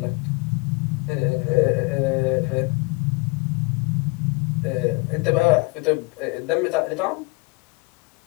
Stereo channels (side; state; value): right; quieter; 26.9 dB